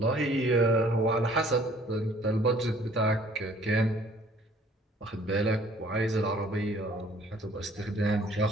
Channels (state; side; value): normal; both; correlation 0.57